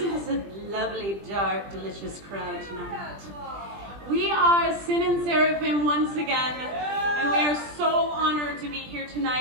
this a lovely, dark, delicious crowd tonight? We are Sin and Seraphim once again, and we are so honored to be here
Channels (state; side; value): late; left; 20 ms